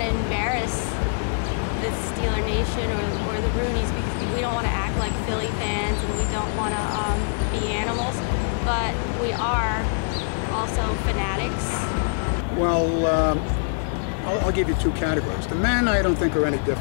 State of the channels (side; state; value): right; silent; digital silence